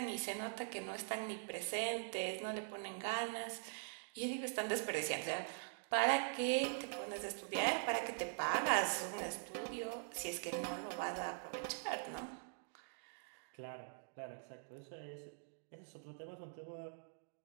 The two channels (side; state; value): left; silent; digital silence